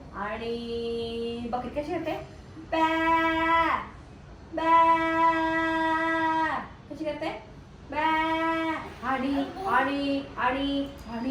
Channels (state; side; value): identical; both; correlation 1.00